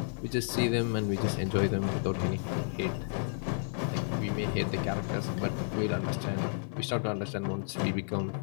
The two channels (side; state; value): right; silent; 57 dB below the other